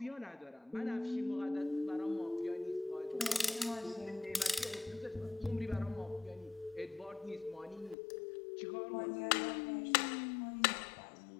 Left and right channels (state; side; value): drops out; right; at 8.0 s